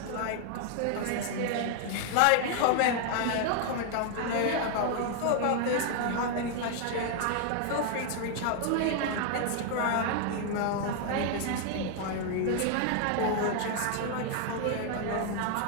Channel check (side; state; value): both; different; correlation 0.00